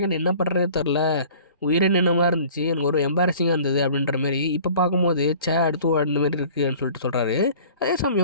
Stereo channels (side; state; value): both; inverted; correlation -0.47